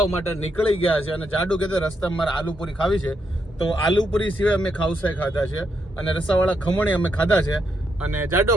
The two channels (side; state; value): both; normal; correlation 0.79